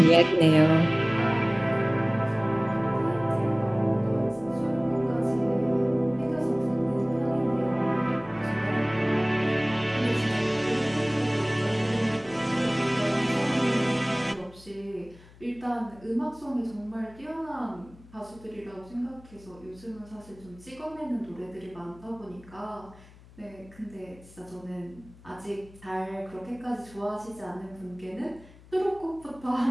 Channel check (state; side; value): noise; left; hum, 23 dB below the sound